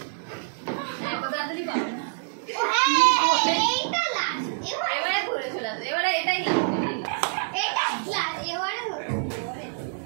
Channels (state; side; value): silent; left; digital silence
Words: এত তাড়াতাড়ি পাবো না ও হ্যাঁ, এইটা লাস্ট। এবারে ঘুরে চলে আসবে এবারে এটাই লাস্ট এটাই লাস্ট। এবারে হলো।